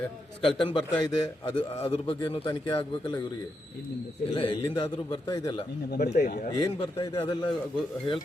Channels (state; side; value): normal; both; correlation 0.83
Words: ಸ್ಕಲ್ಟನ್ ಬರ್ತಾ ಇದೆ, ಅದ್ರ ಬಗ್ಗೆ ತನಿಖೆ ಆಗ್ಬೇಕಲ್ಲ ಇವರಿಗೆ. ಇಲ್ಲ, ಎಲ್ಲಿಂದಾದ್ರೂ ಬರ್ತಾ ಇದೆಯಲ್ಲ, ಏನ್ ಬರ್ತಾ ಇದೆ ಅದೆಲ್ಲ